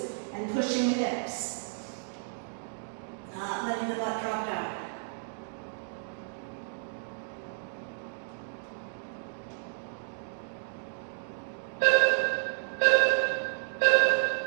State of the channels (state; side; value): silent; left; digital silence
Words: and pushing the hips. Not letting the butt drop down.